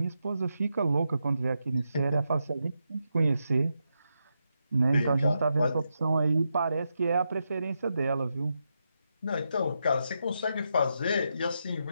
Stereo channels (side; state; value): both; inverted; correlation -0.85